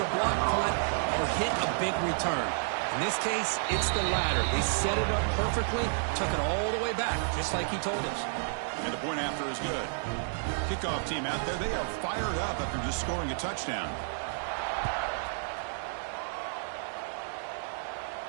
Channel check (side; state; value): left; silent; 57 dB below the other